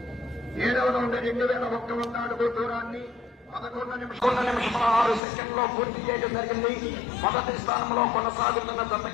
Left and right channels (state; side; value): drops out; right; at 5.2 s